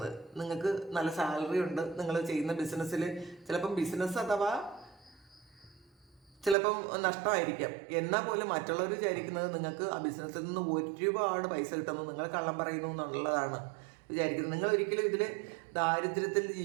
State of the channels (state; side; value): drops out; left; at 6.6 s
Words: നിങ്ങൾക്ക് നല്ല സാലറി ഉണ്ട്. നിങ്ങൾ ചെയ്യുന്ന ബിസിനസ്സിൽ ചിലപ്പം ബിസിനസ് അഥവാ ചിലപ്പം നഷ്ടമായിരിക്കാം. എന്നാൽ പോലും മറ്റുള്ളവർ വിചാരിക്കുന്നത് നിങ്ങൾക്ക് ആ ബിസിനസ്സിൽ നിന്ന് ഒരുപാട് പൈസ കിട്ടുന്നു, നിങ്ങൾ കള്ളം പറയുന്നു എന്നുള്ളതാണ്. വിചാരിക്കുന്നത്. നിങ്ങൾ ഒരിക്കലും ഇതിൽ ദാരിദ്ര്യത്തിൽ